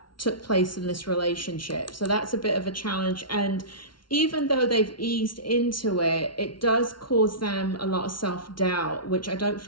took place in this relationship. So that's a bit of a challenge. And even though they've eased into it, it does cause them a lot of self-doubt, which I don't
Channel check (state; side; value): late; right; 0.73 ms